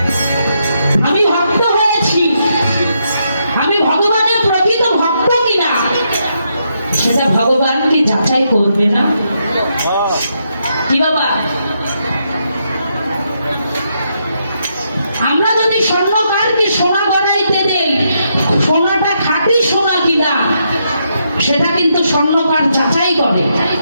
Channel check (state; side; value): inverted; both; correlation -0.79